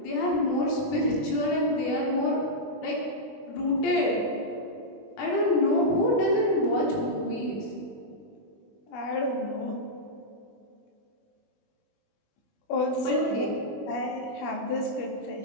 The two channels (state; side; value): late; right; 20 ms